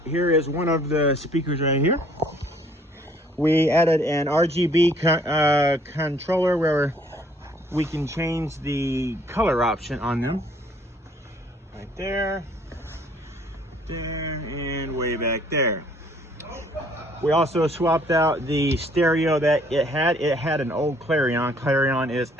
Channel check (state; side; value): normal; both; correlation 0.60